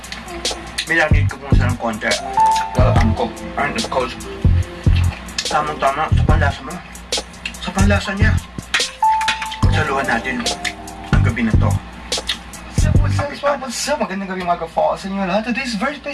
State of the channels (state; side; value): identical; both; correlation 1.00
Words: Minanid ko muna sa ng konti. Well, ang cook. And of course, tamang-tama sa panlasa mo. Sa panlasa niya. Pagsaluhan natin ang gabi na to. What's up? Magandang gabi mga ka-fall sa inyo lahat. Today's very